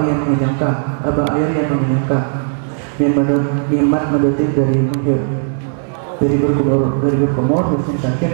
yang mengenyangkan, apa air yang mengenyangkan mimat mendetik dari menghir dari berkumur musim sakit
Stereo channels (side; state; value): left; silent; digital silence